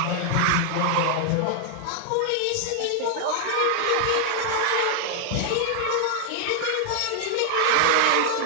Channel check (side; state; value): both; different; correlation 0.00